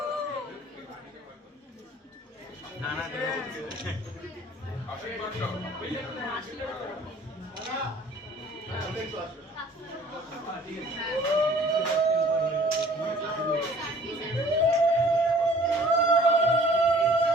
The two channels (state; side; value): normal; both; correlation 0.52